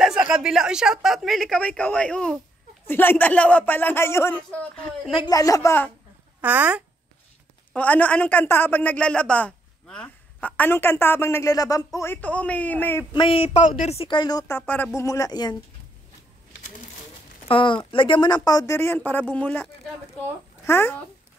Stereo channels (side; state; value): both; normal; correlation 0.75